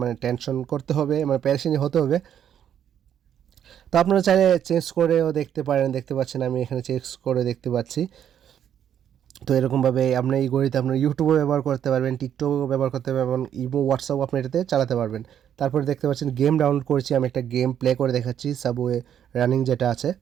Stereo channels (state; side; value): quieter; left; 9.5 dB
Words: টেনশন করতে হবে, মানে প্যারেশানি হতে হবে। তো আপনারা চাইলে চেঞ্জ করেও দেখতে পারেন, দেখতে পাচ্ছেন আমি এখানে চেঞ্জ করে দেখতে পাচ্ছি। তো এরকমভাবে আপনি এই ঘড়িতে আপনার ইউটিউবও ব্যবহার করতে পারবেন, টিকটকও ব্যবহার করতে পারবেন, ইমো, হোয়াটসঅ্যাপও আপনি এটাতে চালাতে পারবেন। তারপরে দেখতে পাচ্ছেন গেম ডাউনলোড করেছি, আমি একটা গেম প্লে করে দেখাচ্ছি, সাবওয়ে রানিং যেটা আছে।